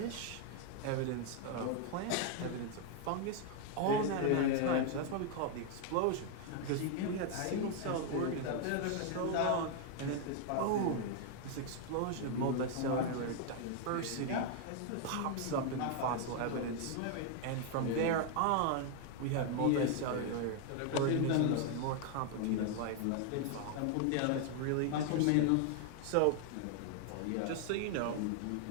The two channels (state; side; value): different; both; correlation 0.00